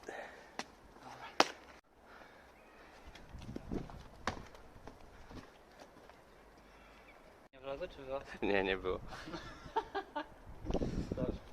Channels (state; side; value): identical; both; correlation 1.00